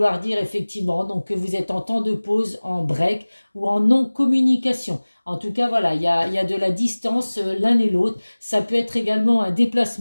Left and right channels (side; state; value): both; inverted; correlation -1.00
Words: dire effectivement donc que vous êtes en temps de pause, en break ou en non-communication. En tout cas, voilà, il y a de la distance l'un et l'autre. Ça peut être également un